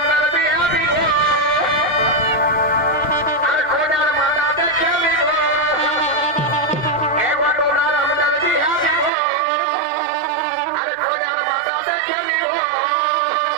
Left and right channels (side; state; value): left; drops out; at 9.1 s